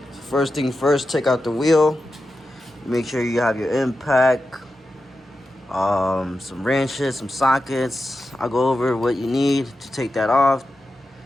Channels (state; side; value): normal; both; correlation 0.91